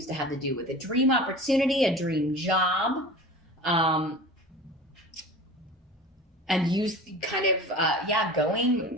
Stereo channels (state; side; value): normal; both; correlation 0.36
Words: to have to do with a dream opportunity, a dream job, and